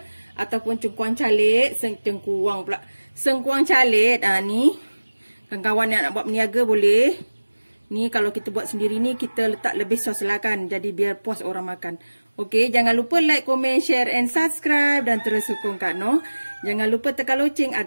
Ataupun cengkuang calit. Sengkuang calit. Ni. Kawan-kawan yang nak buat meniaga boleh. Ni kalau kita buat sendiri ni, kita letak lebih sos lah kan. Jadi biar puas orang makan. Okey, jangan lupa like, komen, share and subscribe. Dan terus sokong Kak Noh. Jangan lupa tekan loceng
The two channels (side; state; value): both; inverted; correlation -1.00